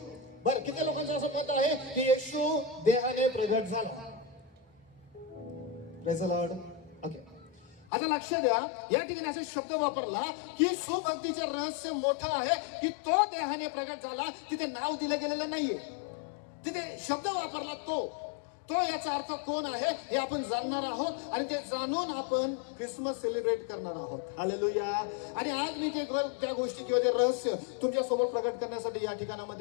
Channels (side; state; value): right; drops out; at 7.9 s